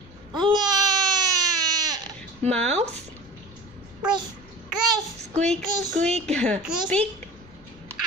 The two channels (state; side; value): noise; right; rumble, 27 dB below the sound